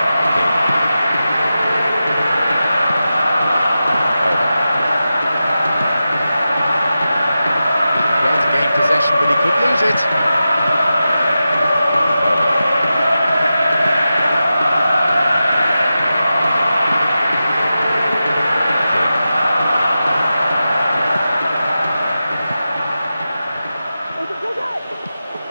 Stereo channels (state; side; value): inverted; both; correlation -0.92